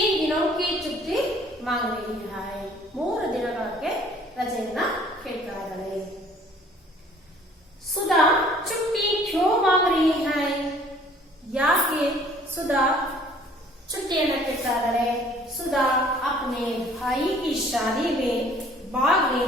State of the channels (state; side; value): normal; both; correlation 0.55